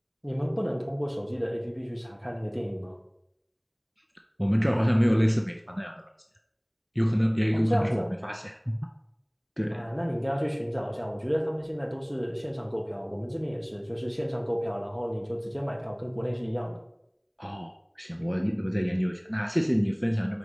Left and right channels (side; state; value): both; identical; correlation 1.00